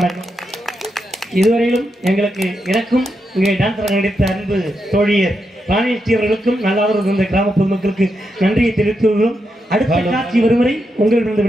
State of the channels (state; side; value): normal; both; correlation 0.84